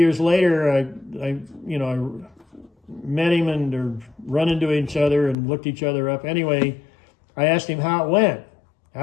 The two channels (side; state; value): right; drops out; at 5.4 s